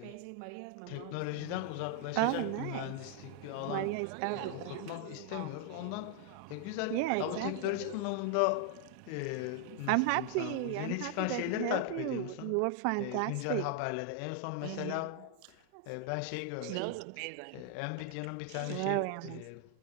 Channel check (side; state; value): both; different; correlation 0.00